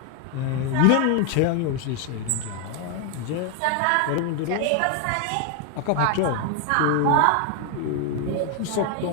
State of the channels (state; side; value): different; both; correlation 0.01